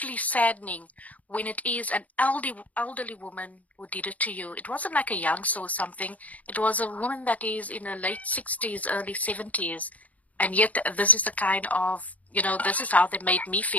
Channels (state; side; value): late; right; 0.072 ms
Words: saddening when it is an elderly woman who did it to you. It wasn't like a youngster or something. It was a woman that is in her late 60s, early 70s. And yet this is the kind of, this is how they made me